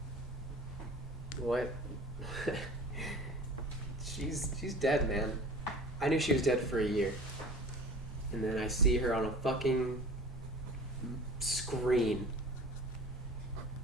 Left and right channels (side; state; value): both; normal; correlation 0.41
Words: What? She's dead, man. I knew she was dead for a year. And then I see her on a fucking screen.